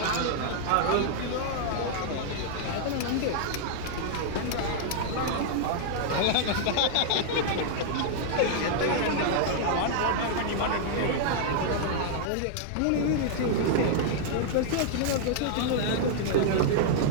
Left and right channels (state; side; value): different; both; correlation -0.01